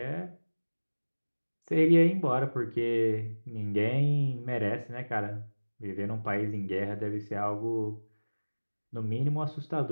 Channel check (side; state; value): both; inverted; correlation -1.00